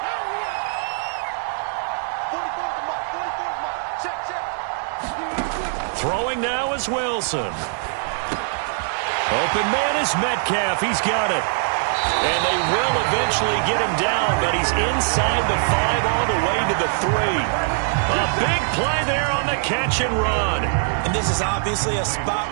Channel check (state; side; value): silent; left; digital silence